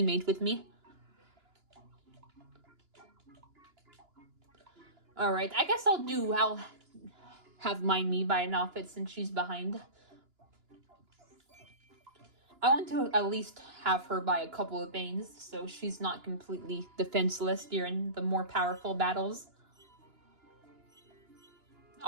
with me. Alright, I guess I'll have me buy an outfit since she's behind. I want to at least have her buy a couple of things so she's not completely defenseless during the more powerful battles.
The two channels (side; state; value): left; late; 2.9 ms